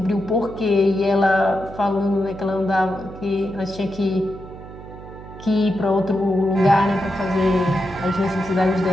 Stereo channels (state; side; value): noise; right; hum, 15 dB below the sound